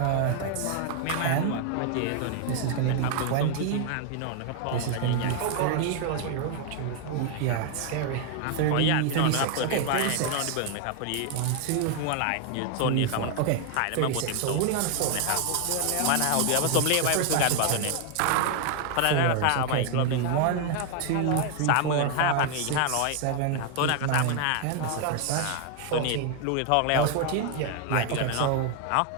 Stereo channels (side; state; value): both; different; correlation 0.00